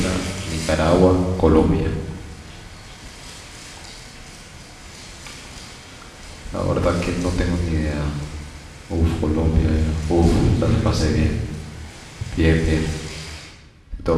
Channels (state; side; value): identical; both; correlation 1.00